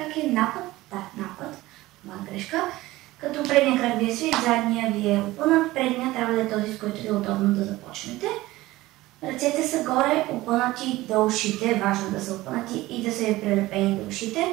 е, напът, напът, моя грешка. Като предния крак ви е свит, задния ви е опънат, предния трябва да е този, с който е удобно да започнете. Ръцете са горе, опънати до ушите, важно да са опънати и да са прилепени до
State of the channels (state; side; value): quieter; left; 18.1 dB